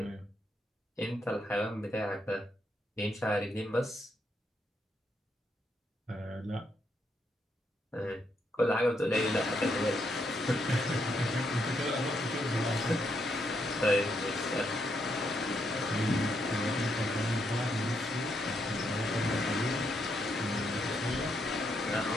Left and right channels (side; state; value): both; normal; correlation 0.78